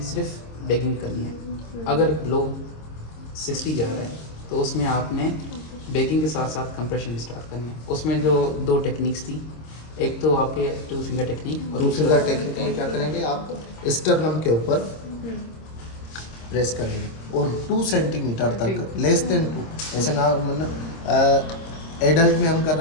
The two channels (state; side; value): late; right; 26 ms